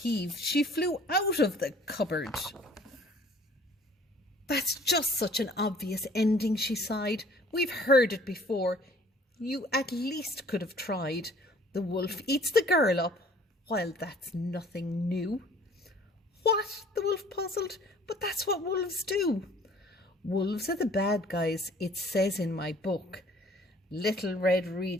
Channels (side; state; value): both; normal; correlation 0.54